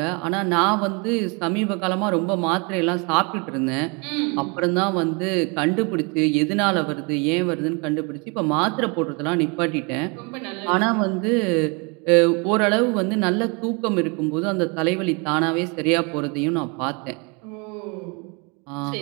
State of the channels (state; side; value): quieter; left; 31.5 dB